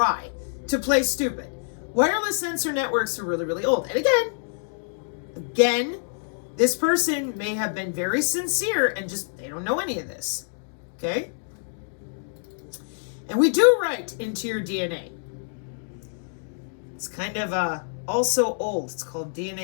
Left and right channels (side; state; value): right; silent; digital silence